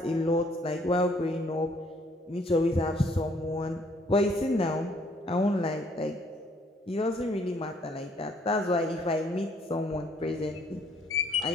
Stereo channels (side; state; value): both; normal; correlation 0.64